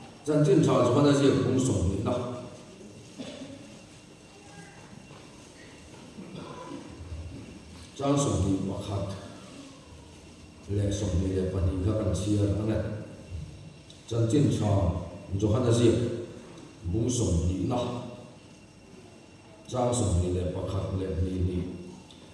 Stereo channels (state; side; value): identical; both; correlation 1.00